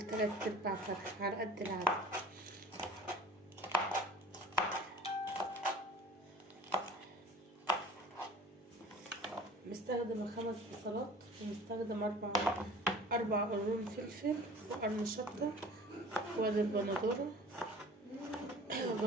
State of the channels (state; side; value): normal; both; correlation 0.45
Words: 3/4 فرخة على قد العدد. مستخدمة 5 بصلات، ومستخدم 4 قرون فلفل وقرن شطة، وادي البندورة